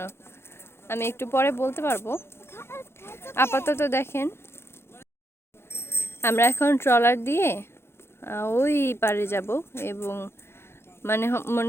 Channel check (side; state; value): right; late; 0.12 ms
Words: আমি একটু পরে বলতে পারবো। আপাতত দেখেন আমরা এখন ট্রলার দিয়ে ওই পারে যাব, এবং